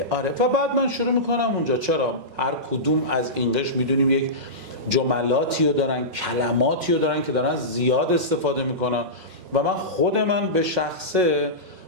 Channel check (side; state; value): left; late; 5.5 ms